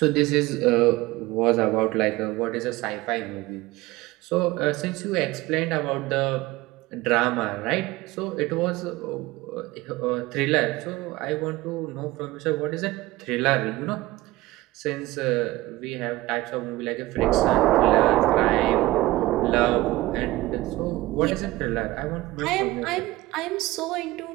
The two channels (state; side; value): quieter; left; 18.7 dB